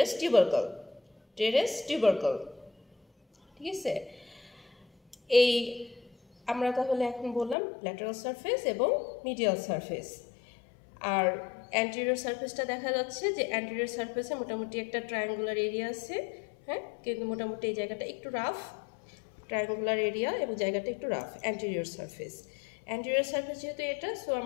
টিউবারকল। ঠিক আছে, এই আমরা তাহলে এখন বললাম ল্যাটারাল সারফেস এবং মিডিয়াল সারফেস। আর অ্যান্টেরিয়র সারফেসটা দেখা যাচ্ছে যে অ্যান্টেরিয়র সারফেসে মোটামুটি একটা ট্রায়াঙ্গুলার এরিয়া আছে, হ্যাঁ, কিন্তু মোটামুটি এই জায়গাটা একটু রাফ, ট্রায়াঙ্গুলার এরিয়া এবং জায়গাটা একটু রাফ। অ্যান্টেরিয়র সারফেস যেহেতু এটা, সো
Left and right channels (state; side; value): drops out; right; at 7.6 s